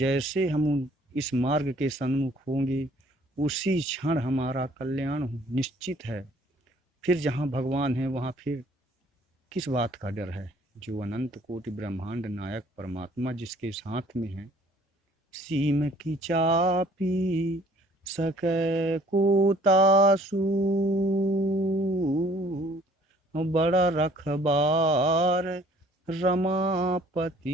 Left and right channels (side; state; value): both; normal; correlation 0.57